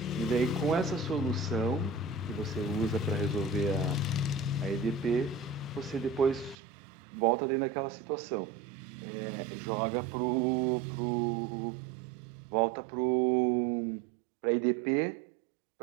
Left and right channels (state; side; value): drops out; left; at 6.6 s